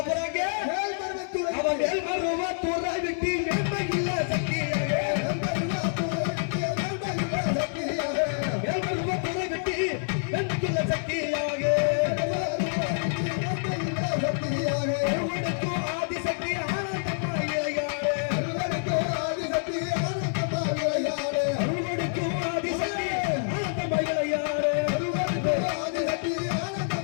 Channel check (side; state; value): right; silent; 60 dB below the other